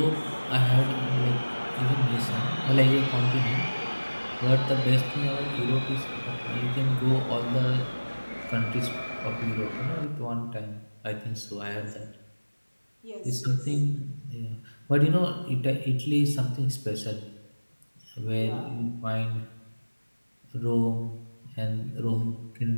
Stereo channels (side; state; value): both; inverted; correlation -1.00